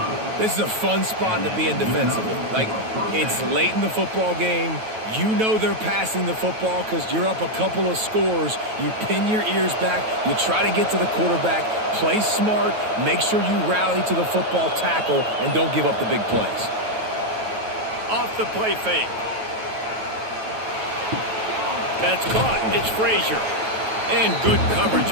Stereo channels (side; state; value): left; late; 9.2 ms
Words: This is a fun spot to be in defensively. Like, it's late in the football game. You know they're passing the football because you're up a couple of scores. You pin your ears back. You try to get to the quarterback. Play smart. Make sure you rally to the football tackle and don't give up the big plays. Off the play fake. That's caught. It's Frazier. And good coverage